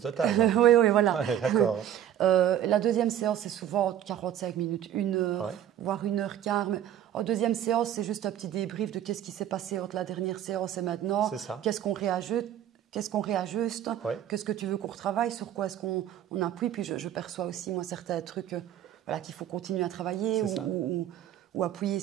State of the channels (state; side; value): quieter; left; 10.9 dB